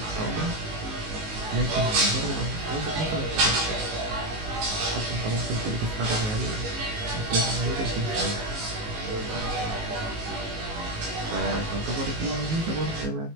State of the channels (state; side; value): late; left; 19 ms